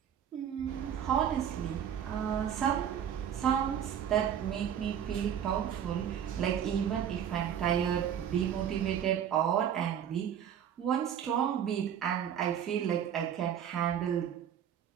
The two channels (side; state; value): left; quieter; 9.2 dB